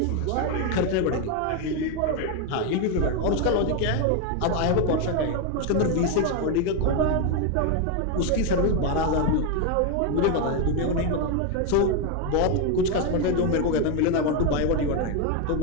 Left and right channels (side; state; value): both; different; correlation 0.01